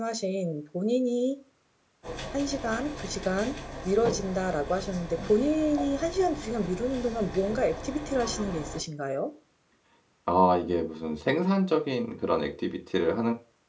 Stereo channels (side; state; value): both; identical; correlation 1.00